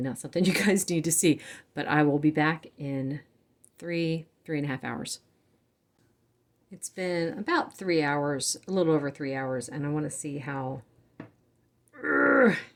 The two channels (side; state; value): both; identical; correlation 1.00